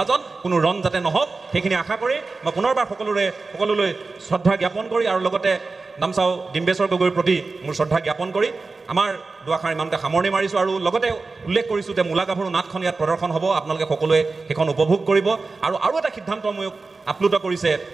কোনো ৰণ যাতে নহওক সেইখিনি আশা কৰি মই পুনৰবাৰ সকলোলৈ শ্ৰদ্ধা জ্ঞাপন কৰি আৰু লগতে নামচাও ডিম্বেশ্বৰ গগৈৰ প্ৰতি মোৰ শ্ৰদ্ধা জ্ঞাপন কৰি আমাৰ দুআষাৰ ইমানতে সামৰণি মাৰিছোঁ আৰু লগতে উল্লেখ কৰিছোঁ যে মূলা গাভৰু নাটখন ইয়াত প্ৰদৰ্শন হ'ব আপোনালোকে সকলোৱে সেইখন উপভোগ কৰিব আৰু এটা সিদ্ধান্ত মোক আপ্লুত কৰিছে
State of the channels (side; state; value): left; quieter; 3.9 dB